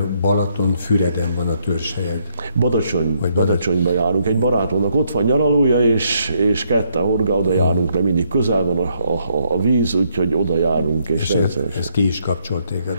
Balatonfüreden van a törzshelyed. Badacsonyba járunk. Egy barátomnak ott van nyaralója, és ketten horgá, oda járunk, mert mindig közel van a víz, úgyhogy oda járunk. És ez ki is kapcsol téged?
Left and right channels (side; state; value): both; inverted; correlation -0.73